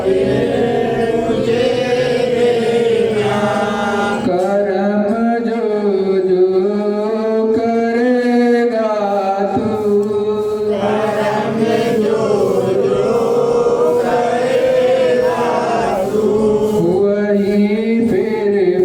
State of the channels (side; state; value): both; identical; correlation 1.00